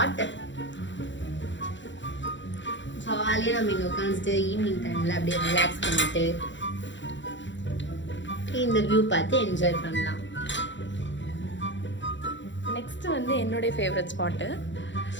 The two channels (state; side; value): late; right; 0.54 ms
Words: ஜாலியாக நம்ம இங்கே உட்காந்துட்டு ஈவினிங் டைமில் அப்படியே ரிலாக்ஸ் பண்ணிட்டு இந்த வியூ பார்த்து என்ஜாய் பண்ணலாம். நெக்ஸ்ட் வந்து என்னுடைய ஃபேவரட் ஸ்பாட்டு.